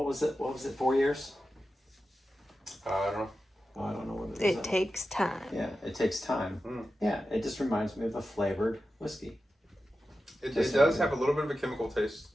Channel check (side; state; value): both; normal; correlation 0.92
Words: was it? 4 years? I don't know. Oh, I don't know what it is. It takes time. Yeah, it takes time. Yeah, it just reminds me of a flavored whiskey. It does have a little bit of a chemical taste.